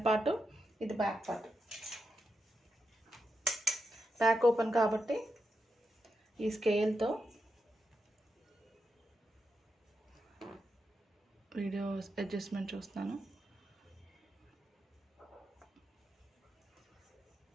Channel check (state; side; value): normal; both; correlation 0.86